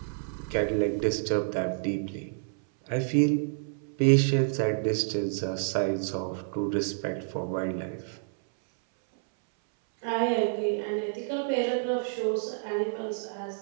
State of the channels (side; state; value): left; silent; 59 dB below the other